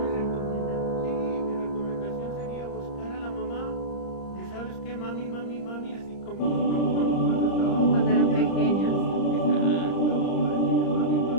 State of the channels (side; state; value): right; late; 30 ms